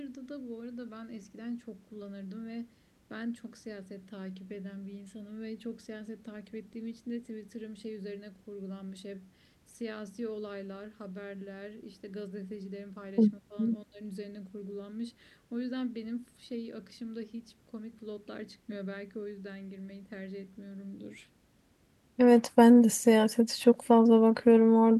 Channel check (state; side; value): identical; both; correlation 1.00